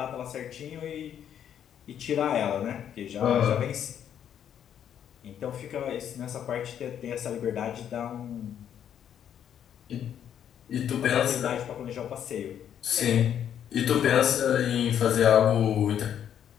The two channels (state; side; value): quieter; right; 9.4 dB